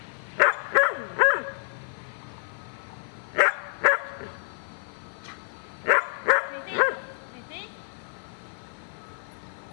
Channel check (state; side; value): silent; right; digital silence